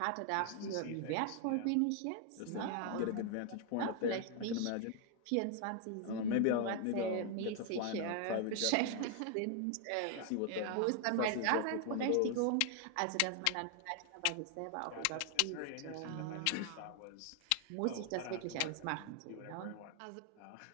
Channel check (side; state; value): both; different; correlation 0.00